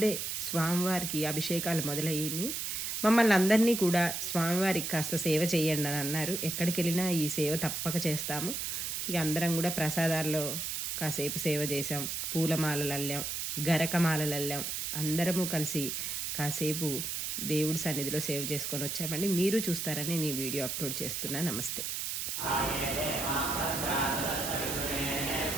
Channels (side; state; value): right; noise; hiss, 3 dB below the sound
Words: స్వామివారికి అభిషేకాలు మొదలయ్యాయి. మమ్మల్ని అందరినీ కూడా స్వామివారికి కాస్త సేవ చేయండి అని అన్నారు. ఎక్కడికి వెళ్ళినా ఈ సేవ తప్పక చేస్తాము. ఇక అందరం కూడా ప్రసాదాల్లో కాసేపు సేవ చేసాం, పూలమాలలు అల్లాం, గరకమాలలు అల్లాం. అందరము కలిసి కాసేపు దేవుడి సన్నిధిలో సేవ చేసుకొని వచ్చామండి. మీరు చూస్తారని నేను వీడియో అప్లోడ్ చేస్తున్నా. నమస్తే.